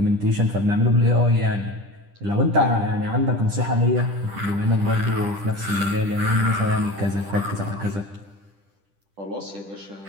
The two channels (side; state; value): left; late; 10 ms